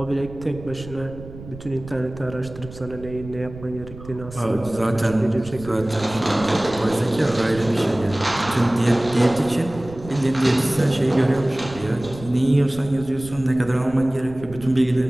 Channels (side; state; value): right; noise; rumble, 15 dB below the sound